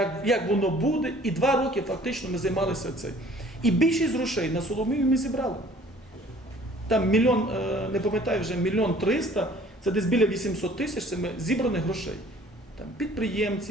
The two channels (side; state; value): both; normal; correlation 0.53